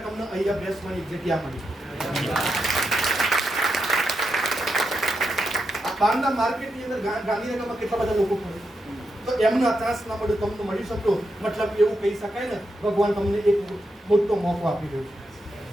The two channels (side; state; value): both; normal; correlation 0.85